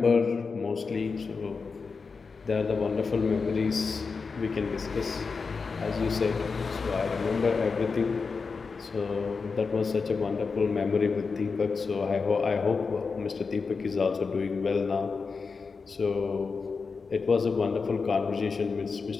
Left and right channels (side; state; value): right; quieter; 4.8 dB